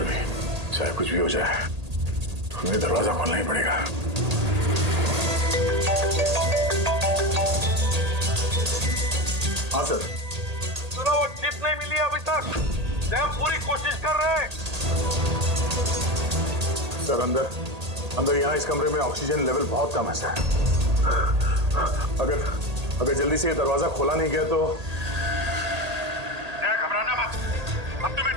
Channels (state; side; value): late; left; 1.8 ms